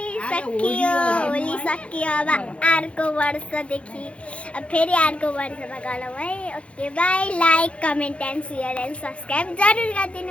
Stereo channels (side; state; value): right; late; 0.061 ms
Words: सकियो होली सकियो अब अर्को वर्षदेखि अब फेरि अर्को वर्षमा गरौँ है okay by like comment and share and subscribe जरुर